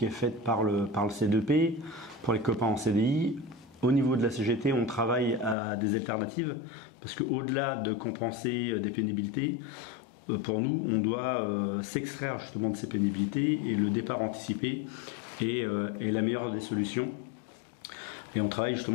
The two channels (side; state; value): right; drops out; at 5.6 s